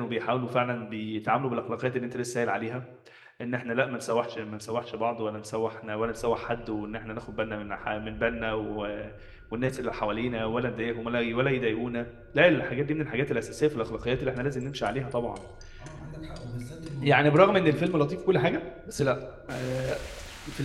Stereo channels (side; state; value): both; identical; correlation 1.00